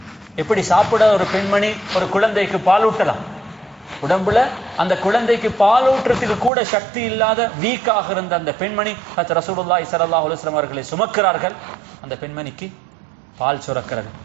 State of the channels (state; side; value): drops out; left; at 6.5 s